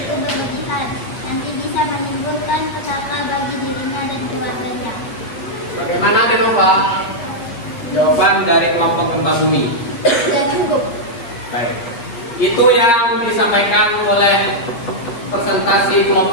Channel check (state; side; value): late; right; 8.8 ms